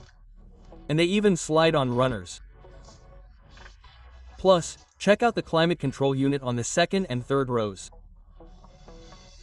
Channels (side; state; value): both; identical; correlation 1.00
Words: And they even slide on runners. Plus, check out the climate control unit on the second and third rows.